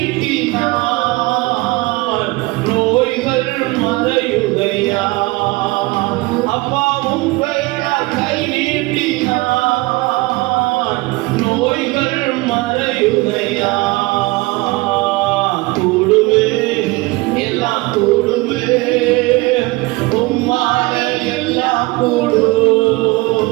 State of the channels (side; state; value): left; quieter; 22.6 dB